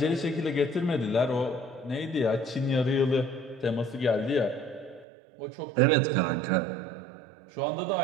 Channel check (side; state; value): left; drops out; at 5.1 s